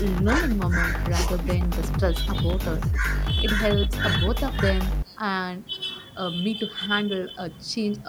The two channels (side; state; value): both; identical; correlation 1.00